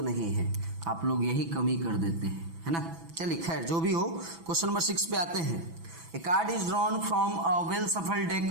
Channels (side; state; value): left; late; 6.0 ms